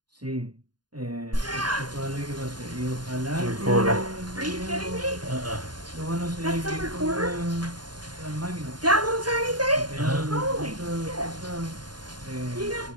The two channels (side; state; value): left; late; 0.70 ms